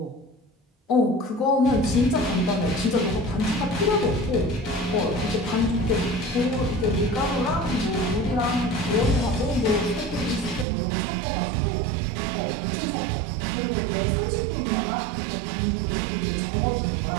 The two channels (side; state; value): left; drops out; at 10.7 s